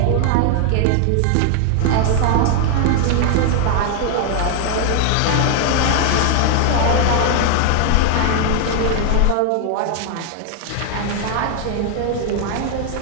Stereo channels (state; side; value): different; both; correlation 0.00